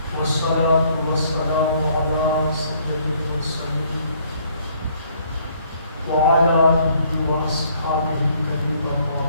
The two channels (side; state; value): both; inverted; correlation -0.63